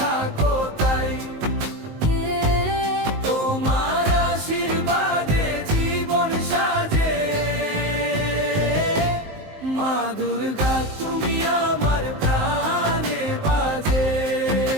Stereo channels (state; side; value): late; left; 19 ms